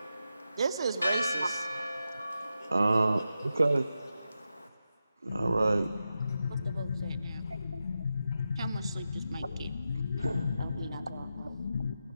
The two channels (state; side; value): inverted; both; correlation -0.89